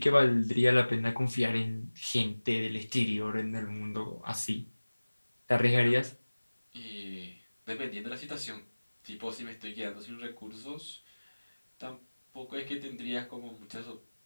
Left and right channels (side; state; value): both; inverted; correlation -1.00